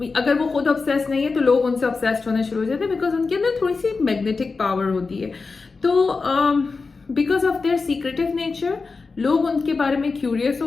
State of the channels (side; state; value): right; quieter; 4.3 dB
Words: अगर वो खुद ऑब्सेस नहीं है तो लोग उनसे ऑब्सेस्ड होने शुरू हो जाते हैं, बिकॉज उनके अंदर थोड़ी सी मैग्नेटिक पावर होती है। तो because of their secretive nature लोग उनके बारे में क्यूरियस